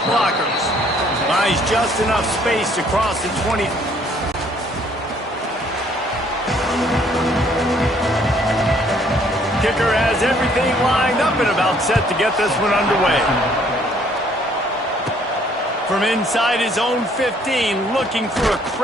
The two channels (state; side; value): normal; both; correlation 0.62